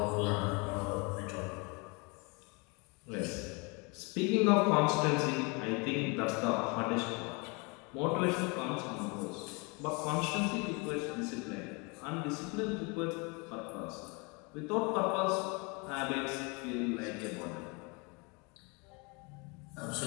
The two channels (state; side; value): quieter; right; 30.2 dB